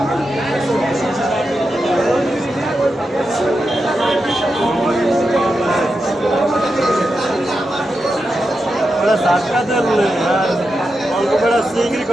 ধাক্কা দিলে আর অল্প করে চিংড়ি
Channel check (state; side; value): normal; both; correlation 0.88